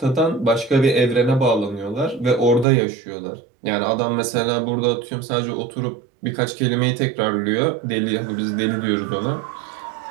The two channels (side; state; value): left; drops out; at 2.7 s